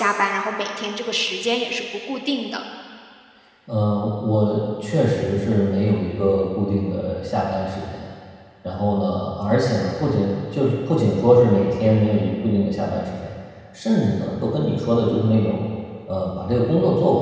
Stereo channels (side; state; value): both; identical; correlation 1.00